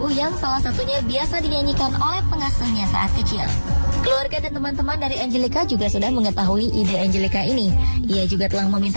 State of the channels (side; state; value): both; inverted; correlation -1.00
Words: yang salah satunya biasa dinyanyikan oleh pengasuhnya saat kecil. Keluarga dan teman-teman dari Angelica juga sudah mengetahui ide Angelica ini. Ia juga telah